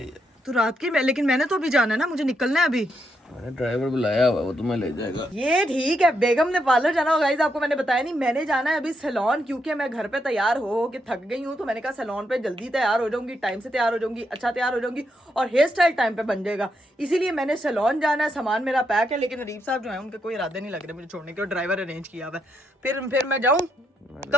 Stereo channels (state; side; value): normal; both; correlation 0.80